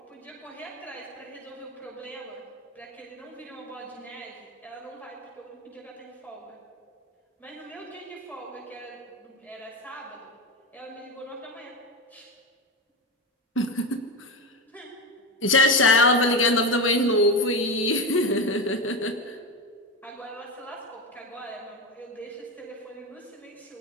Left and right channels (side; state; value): both; normal; correlation 0.17